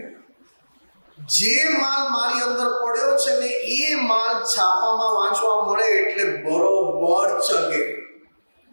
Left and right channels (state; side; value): inverted; both; correlation -1.00